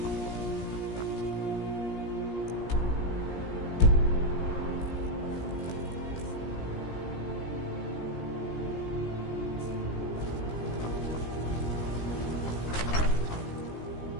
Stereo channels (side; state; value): right; late; 17 ms